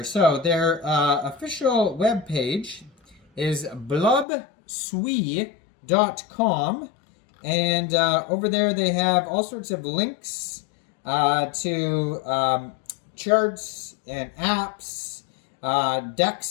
So their official webpage is blubsui.com. And over there they have all sorts of links to charts and apps,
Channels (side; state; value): right; drops out; at 4.2 s